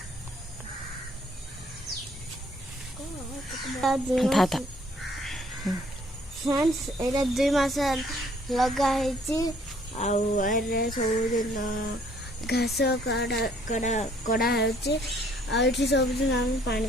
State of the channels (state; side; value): normal; both; correlation 0.62